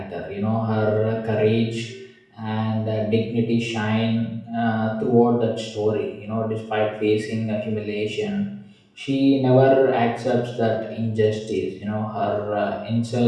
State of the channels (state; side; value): identical; both; correlation 1.00